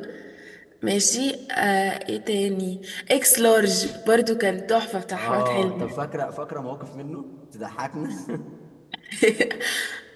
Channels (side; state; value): both; identical; correlation 1.00